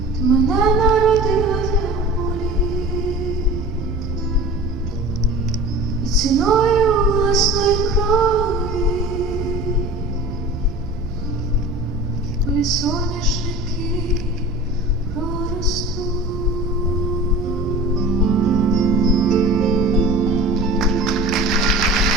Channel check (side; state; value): right; noise; rumble, 11 dB below the sound